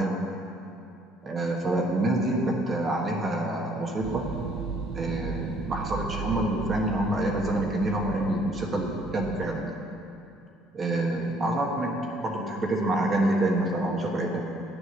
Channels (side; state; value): both; normal; correlation 0.63